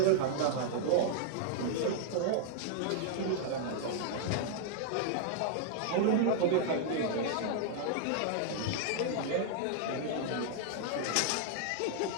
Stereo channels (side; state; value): both; different; correlation -0.01